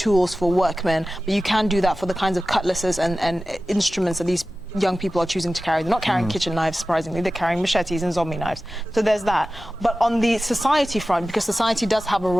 for workmen, but you can do that for the kinds of cutlasses and instruments that these young people are choosing to carry. They're not carrying kitchen knives, surprisingly. They're carrying machetes and zombie knives. So there's that. But on the society front, because society does have a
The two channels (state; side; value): normal; both; correlation 0.95